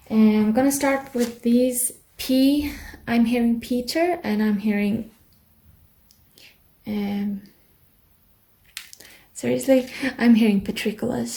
And I'm gonna start with these. P. I'm hearing Peter, and I'm hearing seriously, I'm hearing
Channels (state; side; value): identical; both; correlation 1.00